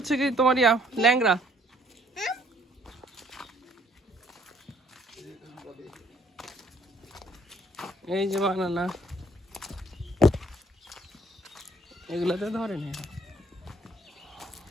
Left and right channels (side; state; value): both; normal; correlation 0.63